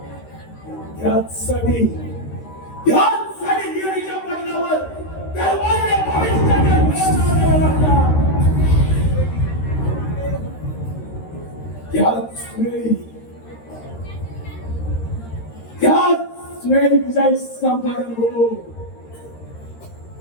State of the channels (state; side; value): late; right; 13 ms